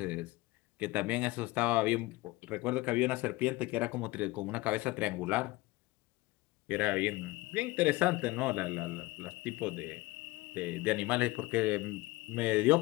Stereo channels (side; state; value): right; quieter; 20.9 dB